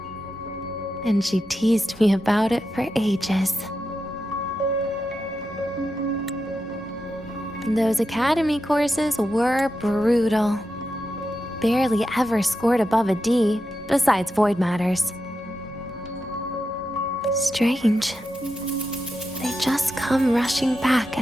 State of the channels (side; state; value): both; normal; correlation 0.88